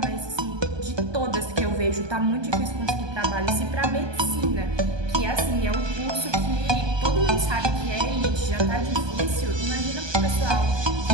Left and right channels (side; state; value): left; late; 1.2 ms